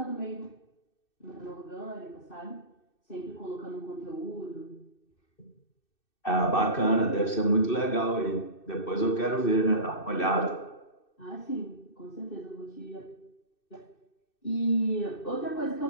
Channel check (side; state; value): right; late; 2.6 ms